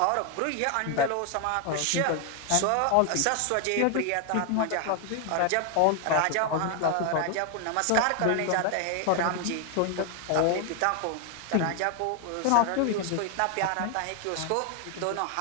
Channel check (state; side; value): different; both; correlation 0.00